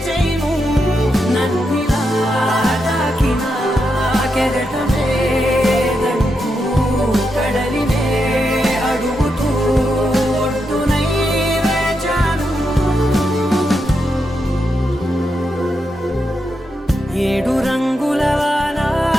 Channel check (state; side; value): normal; both; correlation 0.84